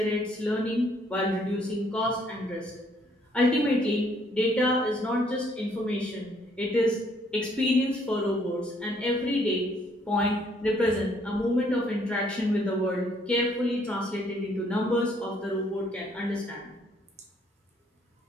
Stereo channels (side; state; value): both; normal; correlation 0.66